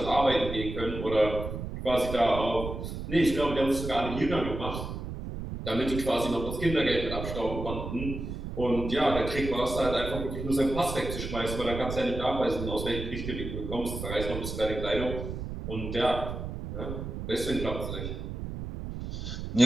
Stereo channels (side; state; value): right; noise; rumble, 6 dB below the sound